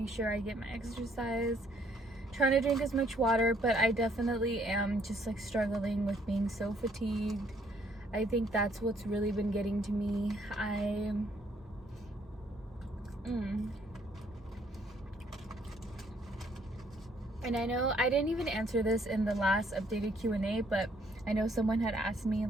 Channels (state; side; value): normal; both; correlation 0.66